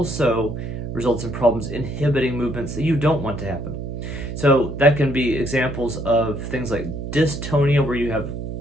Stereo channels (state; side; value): noise; right; hum, 6 dB below the sound